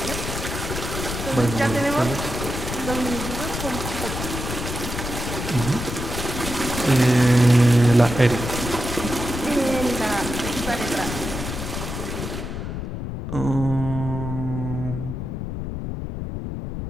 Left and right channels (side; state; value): left; noise; rumble, 5 dB below the sound